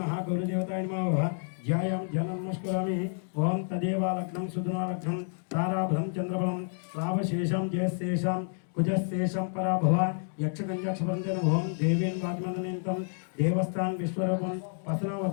మహా గౌరీ దేవతాయ నమః. ధ్యాయం జనం నమస్కరామి. ఓం తదేవా లగ్నం సుధనా లగ్నం తారాభం చంద్రబలం రావశేషం జయశేషం కుజశేషం పరాభవ యక్షగంజక్షపరంజన ఓం దేవేన్ వాగ్మందనేంతం దేవస్థాన్ విశ్వరూపం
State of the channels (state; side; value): silent; right; digital silence